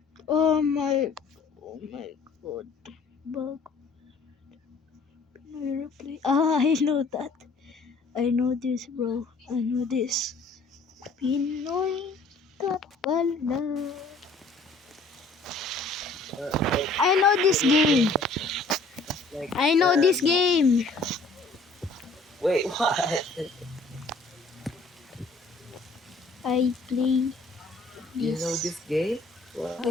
Oh my god. Bug. Replay. Ah, I know that. I know this, bro. I know this. Pinoy ka pala. I know this game. I know this game. Wait, what? I play You know this this game? What?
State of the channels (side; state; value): right; quieter; 3.5 dB